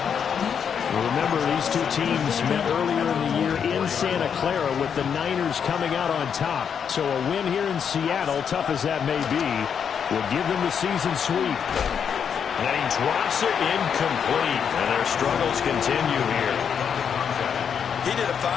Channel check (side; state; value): right; quieter; 7.4 dB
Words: Remember, these two teams met earlier in the year in Santa Clara with the Niners coming out on top. So a win here in Seattle, tough as that may be, will give them the season sweep. And he drops it incomplete, and their struggles continue here. He did a